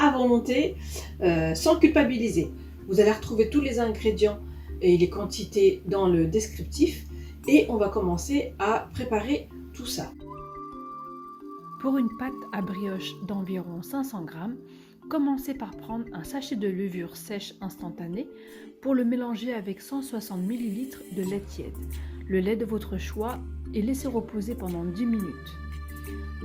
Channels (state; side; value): identical; both; correlation 1.00